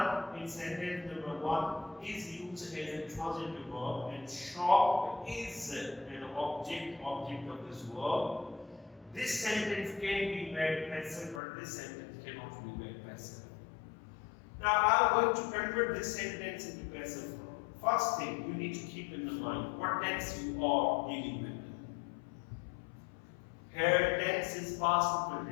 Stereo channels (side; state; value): right; drops out; at 11.4 s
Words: in sentence number 1 is used as a transitive verb and shop is an object of this verb. This sentence can be made passive, but this sentence cannot be made passive. Now I am going to convert this sentence into passive verb. First thing you need to keep in the mind what tense you are dealing with. Here tense is past simple